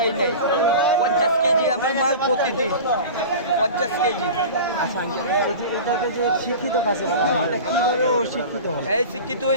নাই 50 কেজি আমার মাল প্রতিদিন 50 কেজি এটাকে যে শিক্ষিত কাছে এটা কিভাবে ও শিক্ষিত হবে এই শিক্ষিত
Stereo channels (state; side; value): inverted; both; correlation -0.34